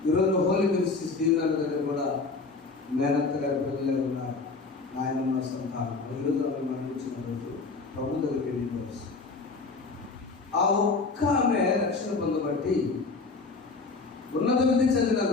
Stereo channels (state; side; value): quieter; right; 4.0 dB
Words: ఈరోజు హోలీ మినిస్ట్రీస్ దీవెనల దగ్గర కూడా మేనత్త గారి పిల్లలే ఉన్నారు. నాయనమ్మ సంతానం ఈరోజు ఆమె మరణించిన రోజు ప్రభు దగ్గరికి వెళ్ళి ఆ ఒక్క ఆమె రక్షణ పొందబట్టి ఉన్నత విధి చదివిన